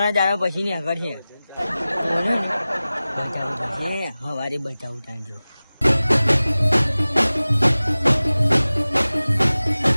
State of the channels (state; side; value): inverted; both; correlation -0.97